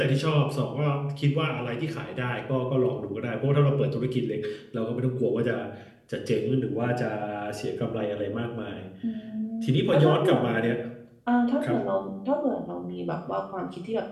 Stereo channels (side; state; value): both; identical; correlation 1.00